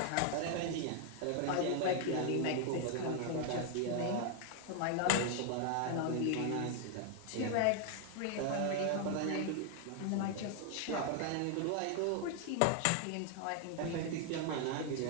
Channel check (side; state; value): both; different; correlation 0.00